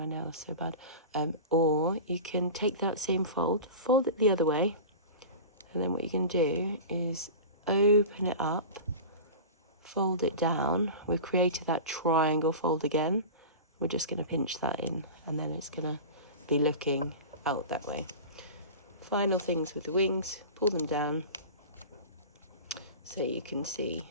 nails so bad, or you can take that same fold it the other way, and then what you can do is open it up, fold it down. We've created that triangle fold again. We're just going to pinch that in, and then it's going to be looking out that way. final things with the wings, pull them down so you can see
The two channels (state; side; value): inverted; both; correlation -0.32